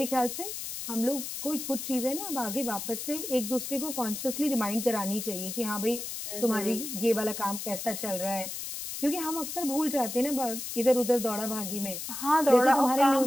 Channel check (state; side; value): noise; left; hiss, 6 dB below the sound